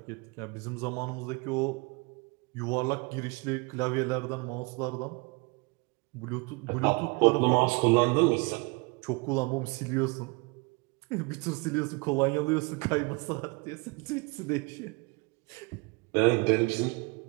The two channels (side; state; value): left; quieter; 28.6 dB